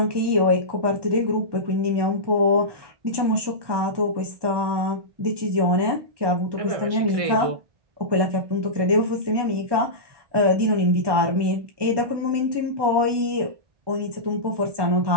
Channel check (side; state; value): left; late; 1.1 ms